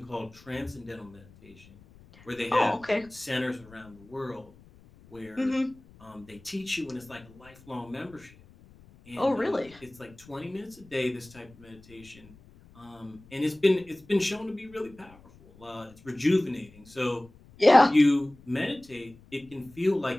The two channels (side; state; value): left; noise; rumble, 24 dB below the sound